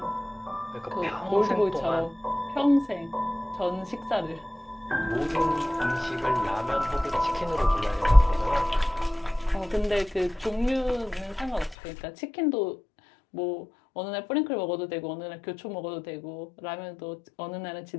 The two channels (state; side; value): drops out; right; at 11.8 s